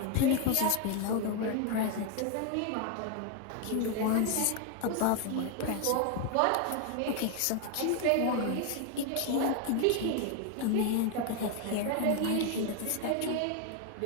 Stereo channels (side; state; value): both; different; correlation 0.01